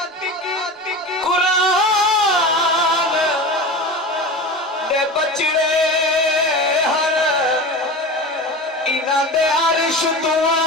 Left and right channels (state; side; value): normal; both; correlation 0.30